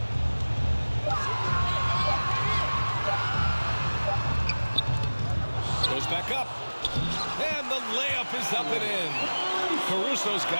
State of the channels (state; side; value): inverted; both; correlation -1.00